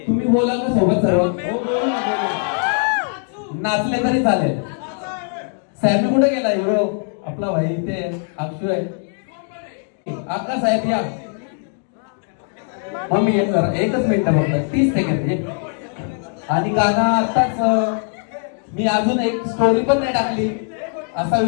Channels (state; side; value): silent; right; 56 dB below the other